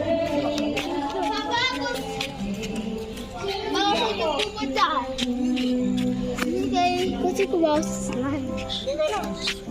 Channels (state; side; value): identical; both; correlation 1.00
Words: Kasi kumaw sa slime.